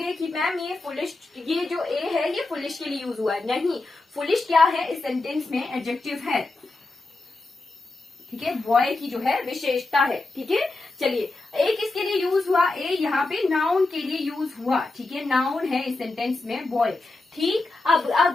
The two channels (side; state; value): right; quieter; 3.2 dB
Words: कि मैम ये फुलिश, ये जो ए है ये फुलिश के लिए यूज हुआ है, नहीं। फुलिश क्या है, इस सेंटेंस में एडजेक्टिव है, ठीक है। बॉय की जो है विशेषता है, ठीक है। चलिए ए किसके लिए यूज हुआ, ए यहाँ पे नाउन के लिए यूज हुआ, ठीक है। नाउन है इस सेंटेंस में बॉय, ठीक। अब